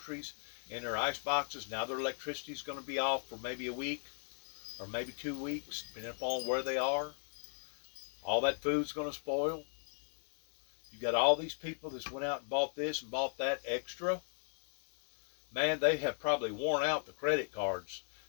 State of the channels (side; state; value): right; silent; digital silence